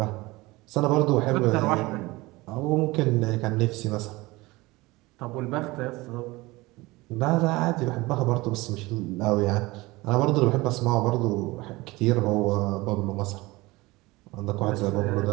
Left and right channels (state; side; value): quieter; left; 21.4 dB